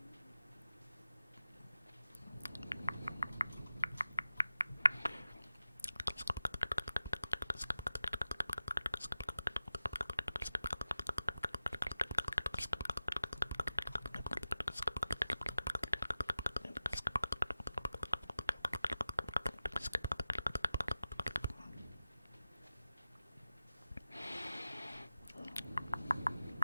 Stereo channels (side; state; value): both; inverted; correlation -0.93